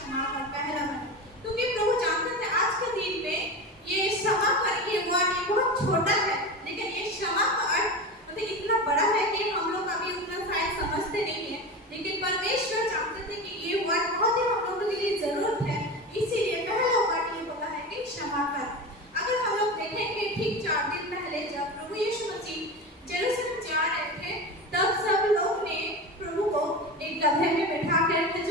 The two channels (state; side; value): normal; both; correlation 0.25